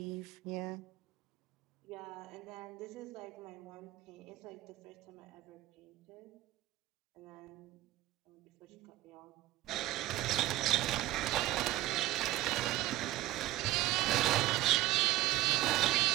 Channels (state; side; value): quieter; left; 16.1 dB